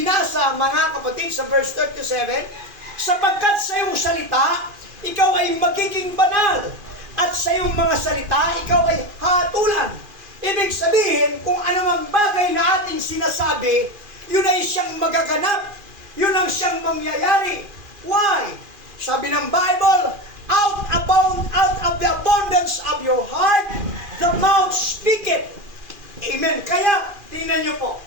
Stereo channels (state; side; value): late; left; 2.4 ms